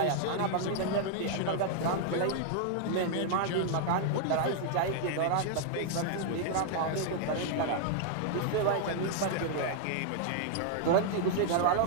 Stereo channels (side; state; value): both; different; correlation 0.00